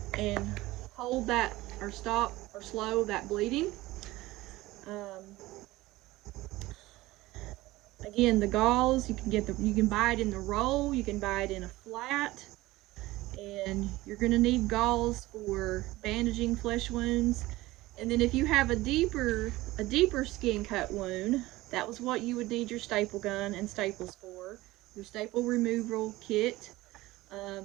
and hold that or stop or slow that bleeding. Again, the gauze, you can buy it in the roll, you can buy it in a flat, and you're going to need gauze for bandaging flesh wounds. And then if you have a deeper skin cut wound, that was what you would need your staple gun and staples for. Your staple removal kit,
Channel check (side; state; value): left; quieter; 18.5 dB